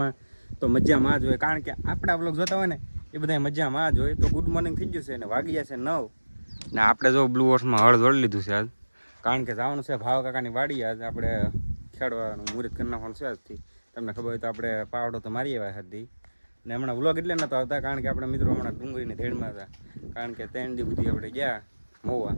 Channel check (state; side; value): inverted; both; correlation -1.00